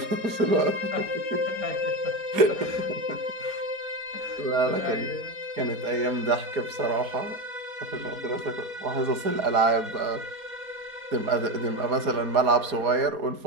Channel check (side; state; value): left; late; 4.2 ms